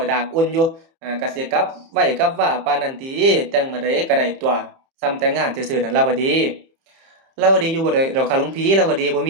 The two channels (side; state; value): left; late; 30 ms